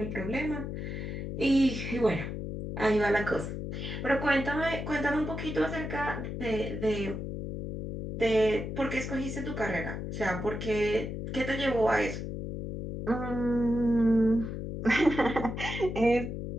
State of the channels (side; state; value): left; noise; hum, 5 dB below the sound